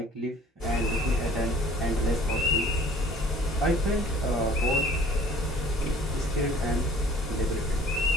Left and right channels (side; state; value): both; normal; correlation 0.51